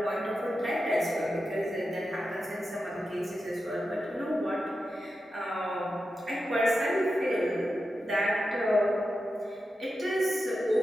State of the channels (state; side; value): normal; both; correlation 0.90